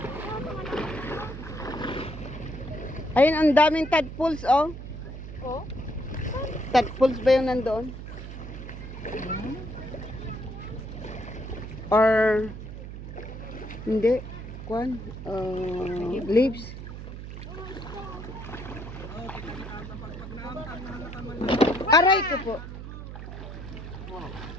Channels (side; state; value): right; noise; hum, 10 dB below the sound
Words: Ayun, ang daming tadpoles, oh. Oh? Tadpoles ba yung nandoon? Or, hindi, kwan, leaves. Aray ko po.